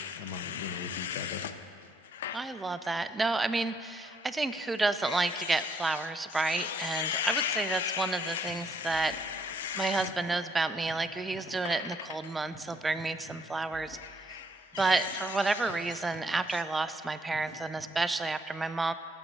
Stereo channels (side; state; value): both; normal; correlation 0.70